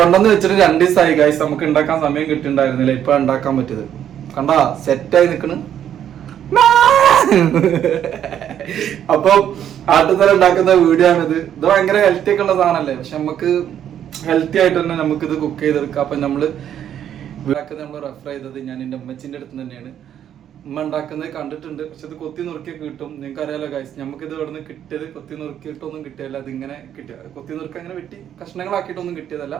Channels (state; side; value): quieter; left; 10.0 dB